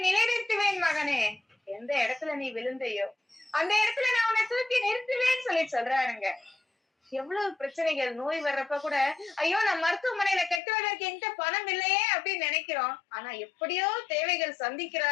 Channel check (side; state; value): right; drops out; at 10.6 s